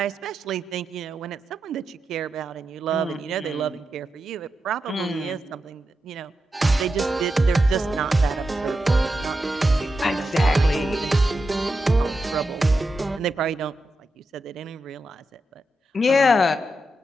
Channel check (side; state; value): both; normal; correlation 0.88